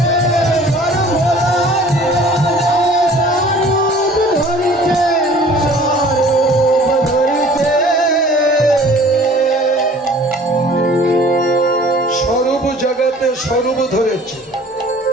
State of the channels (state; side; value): normal; both; correlation 0.50